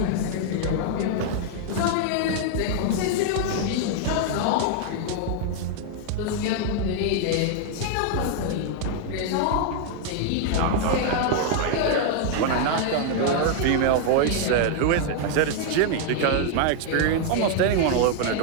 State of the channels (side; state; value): both; different; correlation 0.00